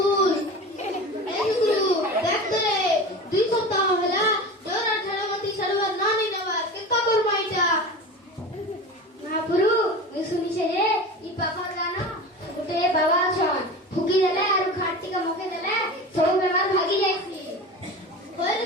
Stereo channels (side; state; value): both; normal; correlation 0.32